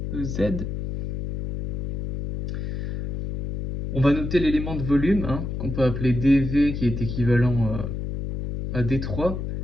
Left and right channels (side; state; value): left; noise; hum, 4 dB below the sound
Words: EZ. On va noter l'élément de volume, qu'on peut appeler dV, qui est équivalent à D3,